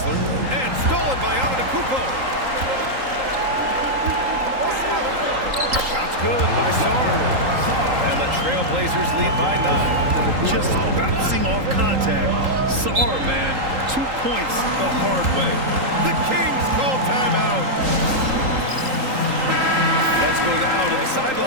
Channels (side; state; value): left; late; 3.8 ms